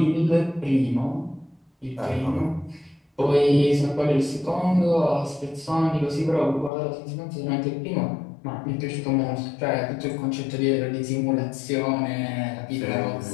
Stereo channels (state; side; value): drops out; right; at 6.7 s